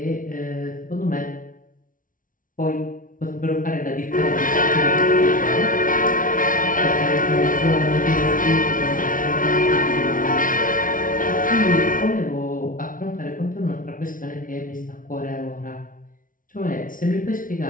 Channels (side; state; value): right; late; 0.39 ms